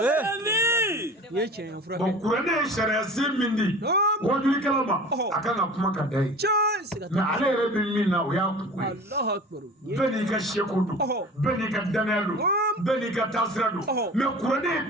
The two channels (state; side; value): normal; both; correlation 0.39